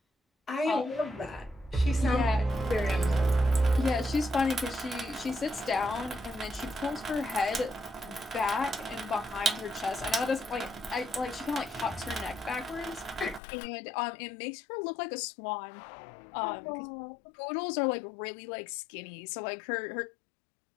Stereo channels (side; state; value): right; drops out; at 13.4 s